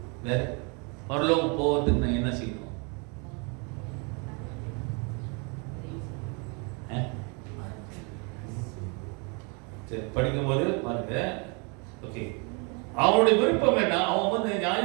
வேற பரலோகம் போவதுக்கு நான் என்ன செய்யணும்? சரி, படிக்கும்போது பாருங்க. ஓகே, அவனுடைய விருப்பம் என்ன? அவன் வந்து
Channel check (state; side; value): quieter; left; 33.9 dB